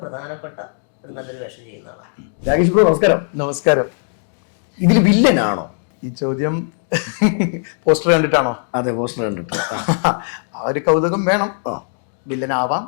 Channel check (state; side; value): silent; right; digital silence